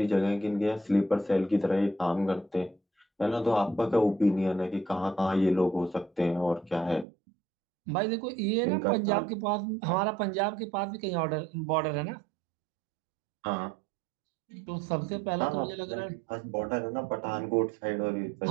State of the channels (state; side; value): drops out; left; at 7.1 s